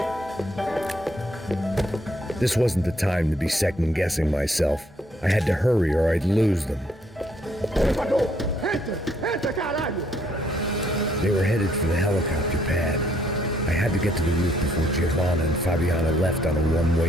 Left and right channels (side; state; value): both; normal; correlation 0.69